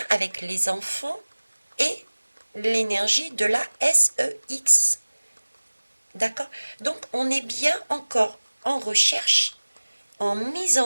avec les enfants et l'énergie de la SEX. D'accord? Donc on est bien encore en recherche, en mise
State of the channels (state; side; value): inverted; both; correlation -1.00